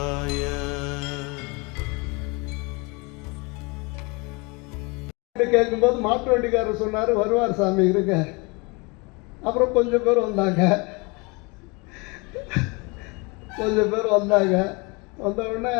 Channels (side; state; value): right; quieter; 28.5 dB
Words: கேட்கும்போது மாட்டு வண்டிக்காரர் சொன்னார், வருவார் சாமி இருங்க. அப்புறம் கொஞ்சம் பேர் வந்தாங்க. வந்த உடனே